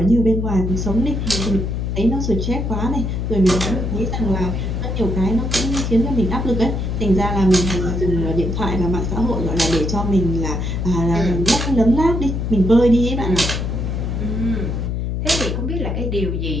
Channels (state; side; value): noise; left; hum, 2 dB below the sound